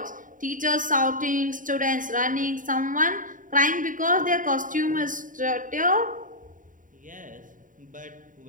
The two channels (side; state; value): left; late; 0.38 ms